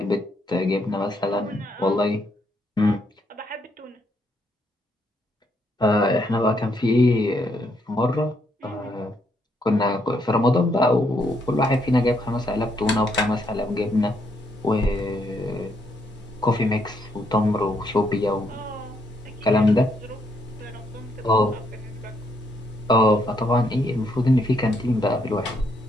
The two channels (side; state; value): both; normal; correlation 0.74